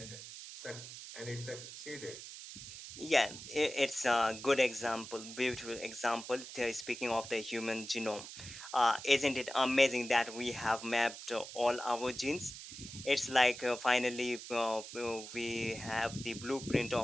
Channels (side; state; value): right; noise; hiss, 12 dB below the sound